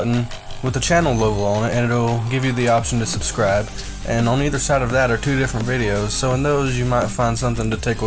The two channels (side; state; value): both; identical; correlation 1.00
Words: with the channel logo on it, and it'll give you the option to subscribe. And on either side of that are 2 different videos, so in those you might find something to